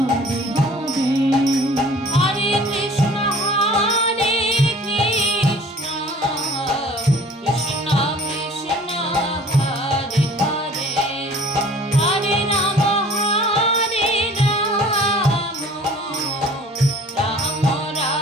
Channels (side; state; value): both; normal; correlation 0.49